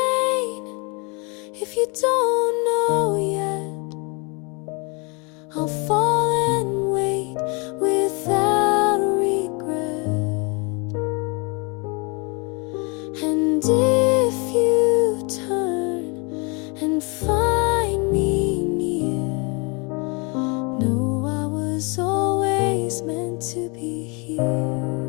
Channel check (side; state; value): right; quieter; 31.2 dB